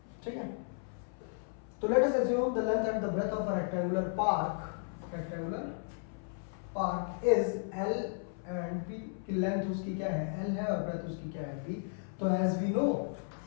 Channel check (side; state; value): right; silent; 55 dB below the other